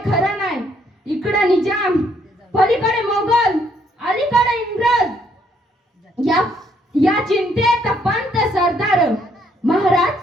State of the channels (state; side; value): normal; both; correlation 0.69